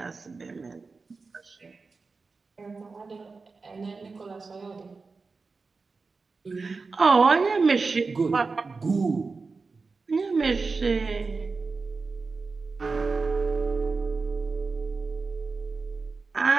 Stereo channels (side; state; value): left; quieter; 4.2 dB